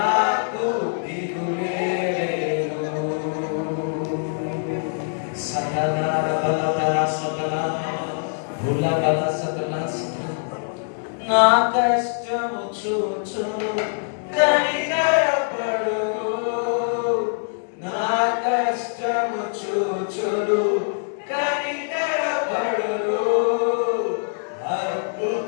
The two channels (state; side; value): silent; right; digital silence